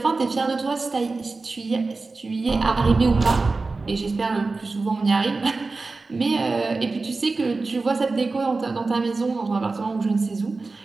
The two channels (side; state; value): left; quieter; 3.8 dB